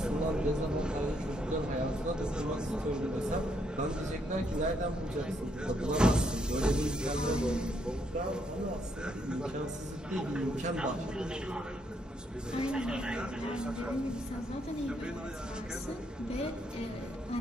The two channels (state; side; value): normal; both; correlation 0.74